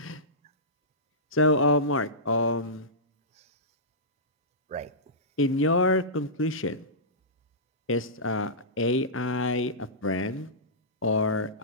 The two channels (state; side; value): normal; both; correlation -0.18